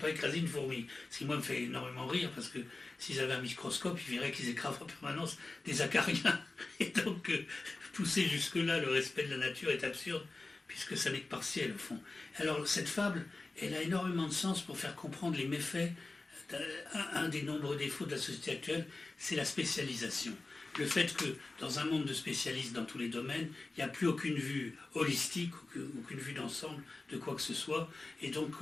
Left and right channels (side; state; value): right; quieter; 3.3 dB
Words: écraser une fourmi. Ce qui, moi, me fait énormément rire, parce que s'ils avaient un microscope, ils verraient qu'ils écrasent en permanence des acariens. Et donc, pousser jusque-là, le respect de la nature est absurde, puisque ça n'est que partiel, au fond. Alors, cette fable, elle a énormément de sens pour faire comprendre les méfaits. Un des nombreux défauts de la société actuelle, c'est la spécialisation. Le fait que dans un monde de spécialistes dans tous les domaines, il n'y a plus aucune vue holistique, aucune vue d'ensemble de quoi que ce soit, et donc